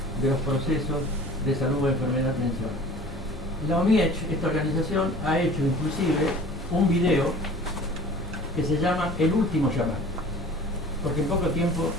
de los procesos de salud, enfermedad, atención. La OMIECH, esta organización, ha hecho inclusive un video que se llama El último chamán, porque en poco tiempo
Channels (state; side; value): normal; both; correlation 0.44